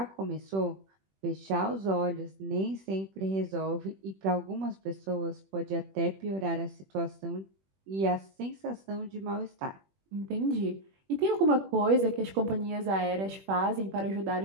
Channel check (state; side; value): late; left; 21 ms